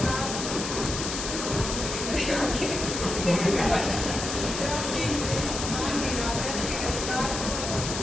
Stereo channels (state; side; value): noise; left; hiss, 4 dB below the sound